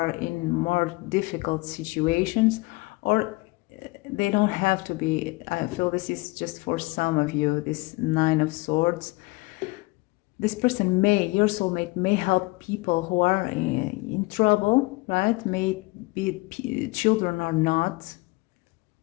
in more difficult situations, or they don't have to be. I feel this is just for some of you, this Nine of Swords. This person your soulmate may help people who are in trouble, right? May be children or not.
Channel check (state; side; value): quieter; right; 24.0 dB